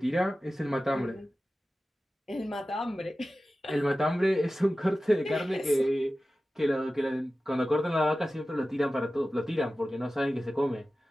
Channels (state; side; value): normal; both; correlation 0.95